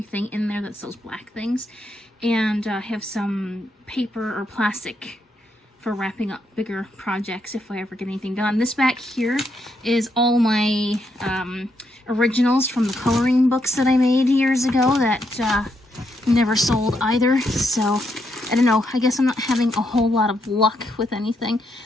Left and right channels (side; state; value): both; normal; correlation 0.79